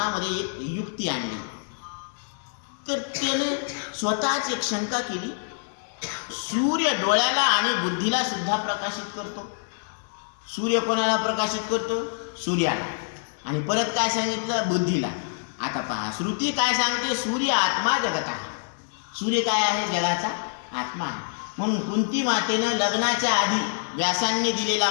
एक युक्ती आणली. तर त्याने स्वतःच एक शंका केली, सूर्य डोळ्याला आणि बुद्धीला सुद्धा प्रकाशित करतो. सूर्य कोणाला प्रकाशित करतो? सूर्याला. आणि परत काय सांगितलं? बुद्धीला. आता पहा, श्रुती काय सांगते? सूर्य आत्मा जगत आहे. सूर्य काय आहे? जगाचा आत्मा आहे. म्हणून कुंती मातेनं लग्नाच्या आधी व्यासांनी दिलेला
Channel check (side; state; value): right; silent; digital silence